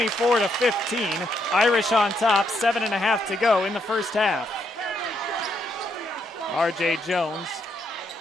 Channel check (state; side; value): normal; both; correlation 0.76